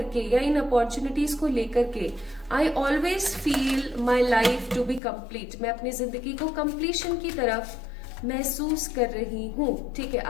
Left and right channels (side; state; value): right; drops out; at 5.0 s